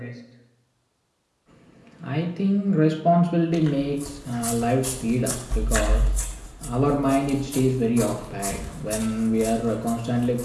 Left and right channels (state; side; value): identical; both; correlation 1.00